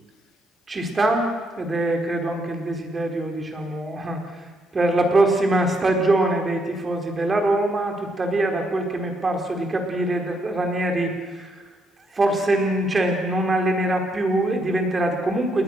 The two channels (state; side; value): normal; both; correlation 0.75